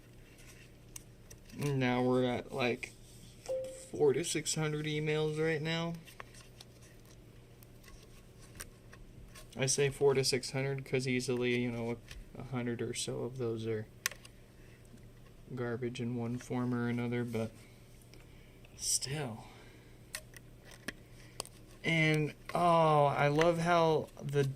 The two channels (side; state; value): both; identical; correlation 1.00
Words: Now we're at like 400 to 600 emails right now. I say 400 to 600 because easily, you know, 100 or so of those are garbage in one form or another, but still. And I love how the